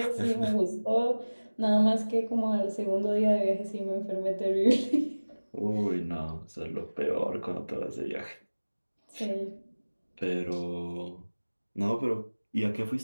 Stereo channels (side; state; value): both; inverted; correlation -1.00